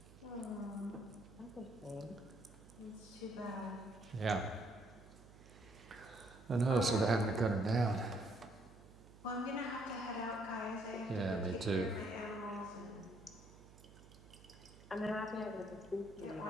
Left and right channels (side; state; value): right; noise; hum, 20 dB below the sound